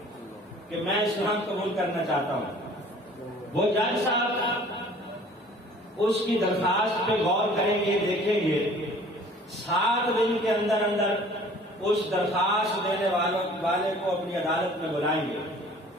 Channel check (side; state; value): both; normal; correlation 0.50